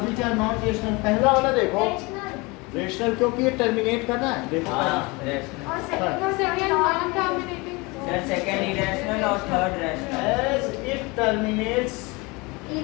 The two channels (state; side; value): quieter; right; 25.7 dB